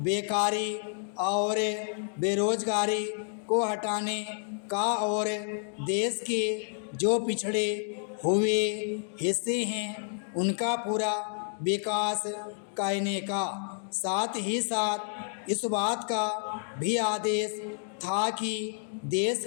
और बेरोजगारी को हटाने का और देश के जो पिछड़े हुए हिस्से हैं उनका पूरा विकास करने का। साथ ही साथ इस बात का भी आदेश था कि देश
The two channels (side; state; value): right; silent; 58 dB below the other